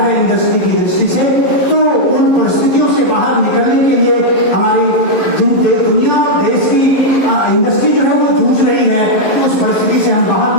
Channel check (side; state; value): right; late; 11 ms